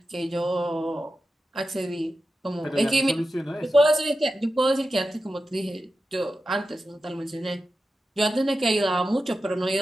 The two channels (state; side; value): normal; both; correlation 0.92